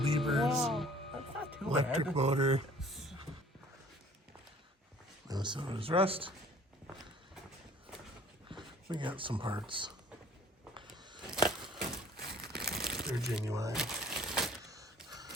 Wow, that's not too electric bad. motor. And so there's rust. We got some parts. They're genuine.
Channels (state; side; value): normal; both; correlation 0.53